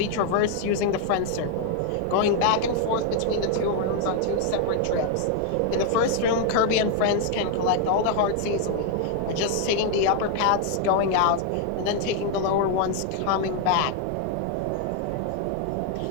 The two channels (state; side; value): different; both; correlation 0.00